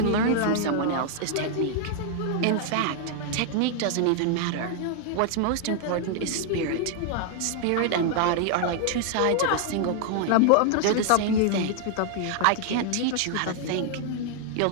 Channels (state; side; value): different; both; correlation 0.00